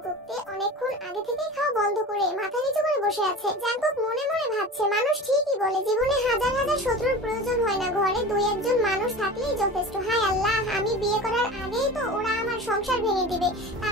তে অনেকক্ষণ আগে থেকেই খাওয়া বন্ধ করে মাথা নিচু করে বসে আছে। জাঙ্কুক মনে মনে ভাবছে, মানুষ ঠিকই বলে জীবনে হাজার হাজার শত্রুর প্রয়োজন হয় না, ঘরে দুই একজন মানুষ থাকলেই যথেষ্ট। হায় আল্লাহ, আমি বিয়ে করার আগেই তো ওরা আমার সংসার ভেঙে দিবে।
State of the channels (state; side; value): normal; both; correlation 0.34